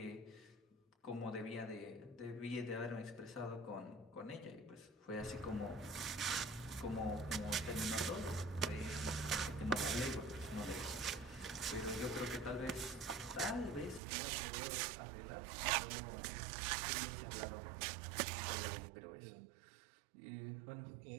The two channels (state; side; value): drops out; left; at 14.0 s